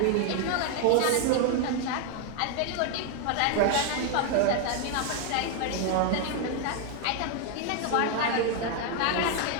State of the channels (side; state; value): both; different; correlation 0.01